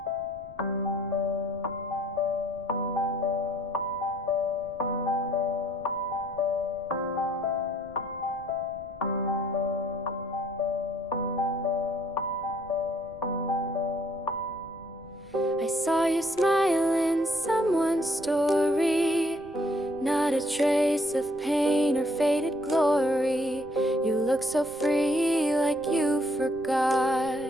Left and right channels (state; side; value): noise; right; rumble, 23 dB below the sound